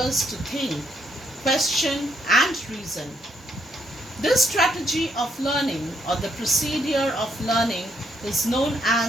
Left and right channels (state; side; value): normal; both; correlation 0.73